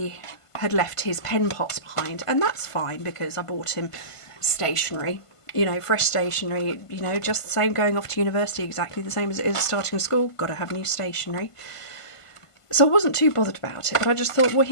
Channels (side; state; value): right; late; 1.5 ms